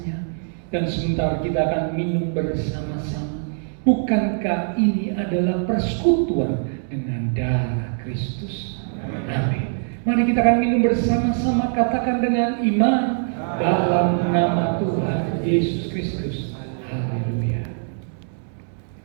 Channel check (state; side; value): silent; left; digital silence